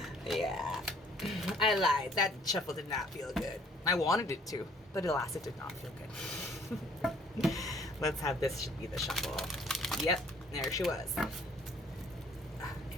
Yeah. I lied. That shuffle did not feel good. I wanted it to, but alas, it did not feel good. Let's have this be the shuffle. Yep, there she was.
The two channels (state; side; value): normal; both; correlation 0.59